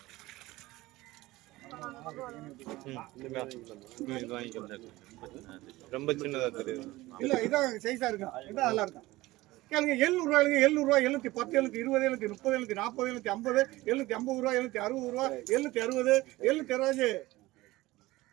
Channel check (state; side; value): quieter; left; 18.9 dB